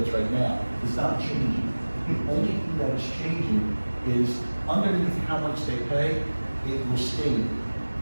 right now is not changing. The only thing that is changing is underneath how much they pay, it will state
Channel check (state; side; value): inverted; both; correlation -1.00